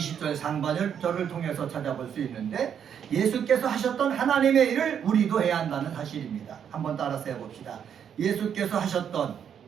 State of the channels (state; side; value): quieter; left; 8.4 dB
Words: 상반절을 통해서 찾아볼 수 있는데, 예수께서 하셨던 하나님의 일을 우리도 해야 한다는 사실입니다. 한번 따라서 해봅시다. 예수께서 하셨던